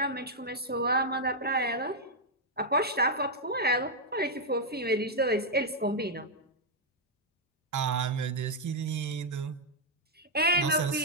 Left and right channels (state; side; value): normal; both; correlation -0.02